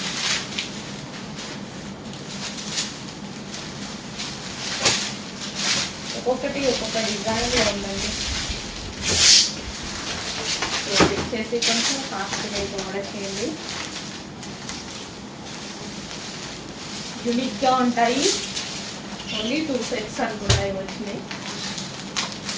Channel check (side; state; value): both; identical; correlation 1.00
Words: ఒక్కొక్క డిజైన్లో ఉందండి. చేసి కొంచెం ఫాస్ట్గా అయితే ఆర్డర్ చేయండి. యూనిక్గా ఉంటాయి. ఓన్లీ 2 సెట్స్ అనుకున్నాయి వచ్చినాయి.